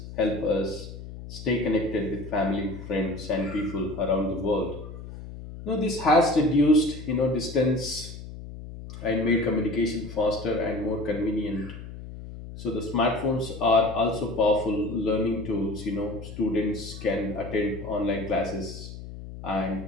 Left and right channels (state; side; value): noise; left; hum, 12 dB below the sound